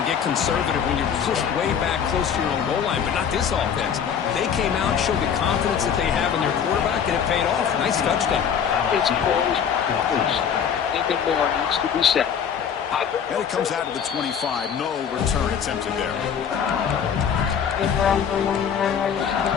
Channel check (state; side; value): quieter; right; 7.7 dB